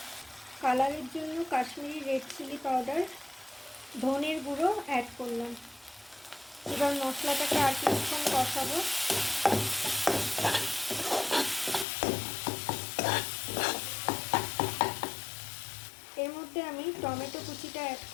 কালারের জন্য কাশ্মীরি রেড চিলি পাউডার, ধনের গুঁড়ো অ্যাড করলাম। এবার মশলাটাকে আর কিছুক্ষণ কষাবো। এর মধ্যে আমি টমেটো কুচিটা অ্যাড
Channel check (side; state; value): right; drops out; at 11.9 s